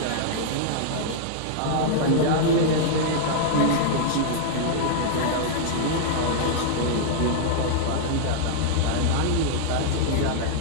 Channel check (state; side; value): different; both; correlation -0.02